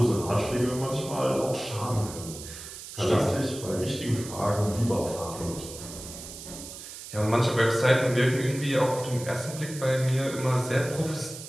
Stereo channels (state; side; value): noise; right; hiss, 12 dB below the sound